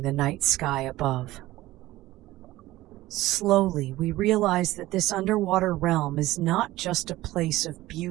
the night sky above. Slowly, we realize that this underwater realm is not just a place of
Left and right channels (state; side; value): quieter; left; 16.9 dB